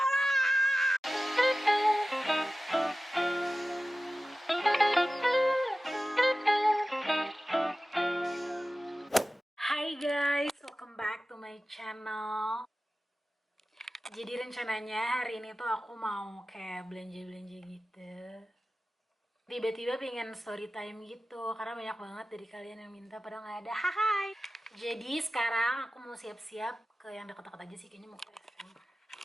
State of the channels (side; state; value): both; normal; correlation 0.96